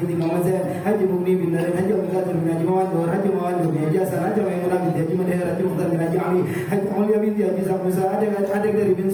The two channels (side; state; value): both; identical; correlation 1.00